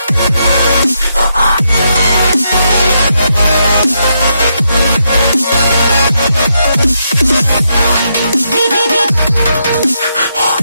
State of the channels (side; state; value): both; inverted; correlation -0.80